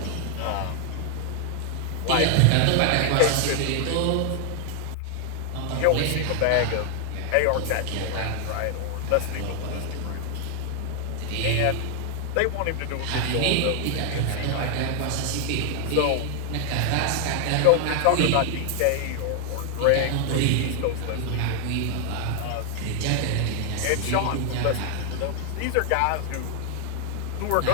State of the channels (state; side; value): different; both; correlation 0.00